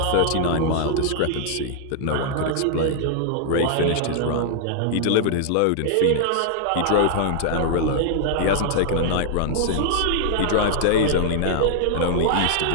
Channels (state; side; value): different; both; correlation -0.01